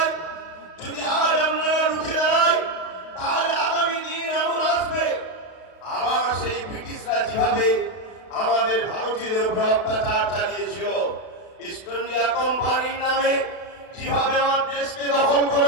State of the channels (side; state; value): right; late; 32 ms